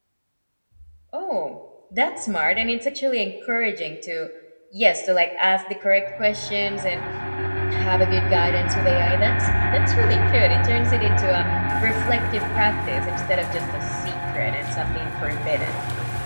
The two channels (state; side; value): inverted; both; correlation -1.00